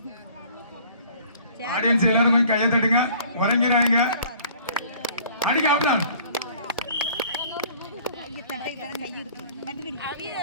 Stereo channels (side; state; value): both; inverted; correlation -0.52